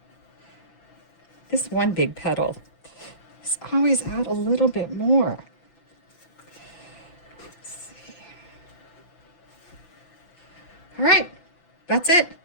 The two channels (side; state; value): right; late; 5.9 ms